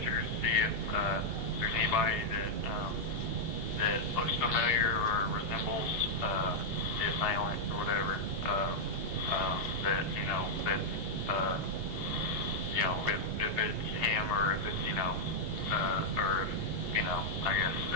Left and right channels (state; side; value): late; left; 2.8 ms